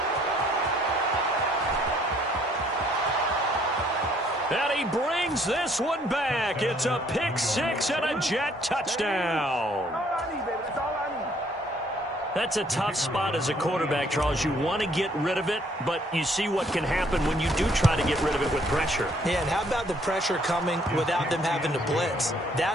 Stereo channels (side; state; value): both; normal; correlation 0.64